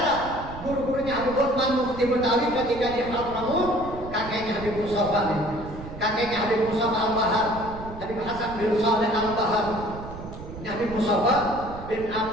guru-gurunya Habib Utsman Mufti Betawi ketika di Hadramut, kakeknya Habib Mustafa nih. Kakeknya Habib Mustafa Al-Bahar, Habib Hasan bin Saleh Al-Bahar. Ini Habib Mustafa bin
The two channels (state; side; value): noise; right; rumble, 12 dB below the sound